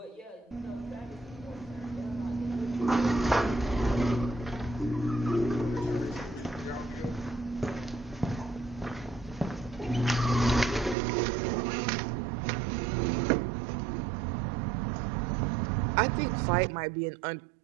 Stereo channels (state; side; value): drops out; left; at 11.0 s